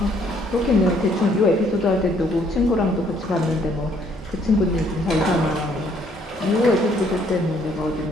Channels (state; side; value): normal; both; correlation 0.66